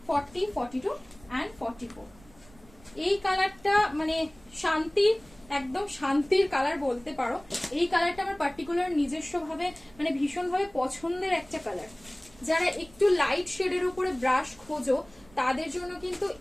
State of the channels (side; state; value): right; noise; rumble, 25 dB below the sound